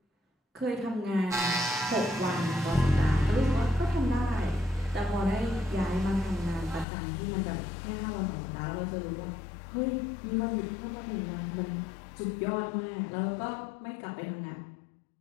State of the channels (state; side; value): drops out; right; at 6.9 s